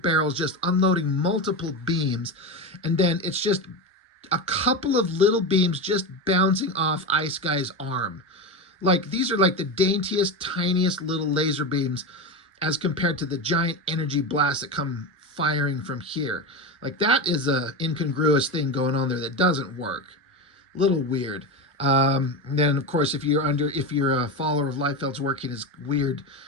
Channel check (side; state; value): both; normal; correlation 0.19